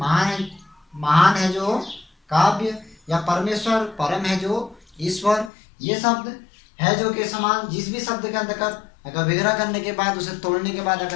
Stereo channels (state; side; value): drops out; right; at 5.5 s